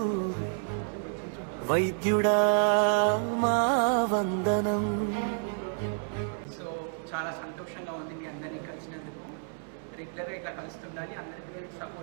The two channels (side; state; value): left; silent; 58 dB below the other